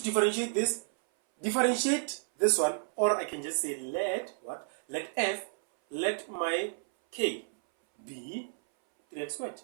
differentiate this. Differentiate this one, or I can just say let what? Let f, let my k be 3x squared.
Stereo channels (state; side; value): silent; left; 57 dB below the other